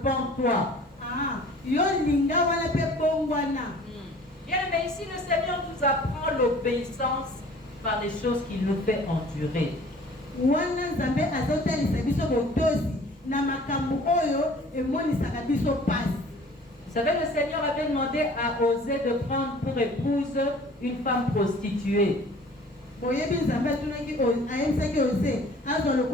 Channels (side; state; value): both; normal; correlation 0.49